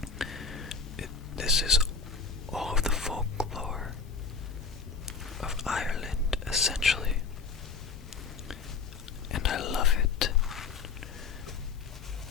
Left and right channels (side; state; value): right; quieter; 5.1 dB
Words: This is all of the folklore of Ireland, essentially. And I love it.